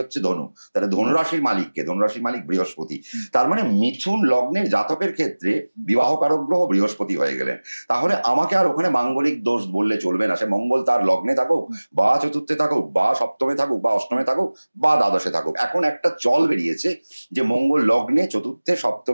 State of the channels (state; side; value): inverted; both; correlation -1.00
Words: ধনু, তাহলে ধনুরাশির মালিককে, ধনুরাশির মালিক বৃহস্পতি। তার মানে মিথুন লগ্নের জাতকের ক্ষেত্রে বিবাহকারক গ্রহ বৃহস্পতি হয়ে গেলেন। তাহলে আমাকে আর ওখানে মাঙ্গলিক দোষ বললে চলবে না। সে মঙ্গল তার লগ্নে থাকুক, বা চতুর্থে থাকুক, বা সপ্তমে থাকুক, বা অষ্টমে থাকুক, বা দ্বাদশে থাকুক। এখন একটা চল বেরিয়েছে যে মঙ্গল লগ্নে, চতুর্থে,